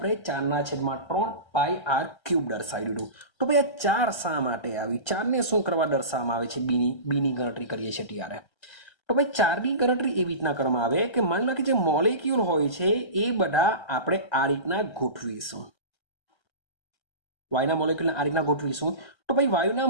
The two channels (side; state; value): right; late; 1.3 ms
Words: 4/3 પાઈ આર ક્યુબ દર્શાવી દીધું. તો ભાઈ આ 4 શા માટે આવી? 4 ને શું કરવા દર્શાવવામાં આવે છે? બીની ગણતરી કરીએ છીએ ત્યારે. તો ભાઈ 4ની ગણતરી એવી રીતના કરવામાં આવે કે માની લો કે જે મોલેક્યુલ હોય છે એ બધા આપણે આ રીતના ગોઠવીશું. વાયુના મોલેક્યુલને આ રીતના ગોઠવીશું. તો ભાઈ વાયુના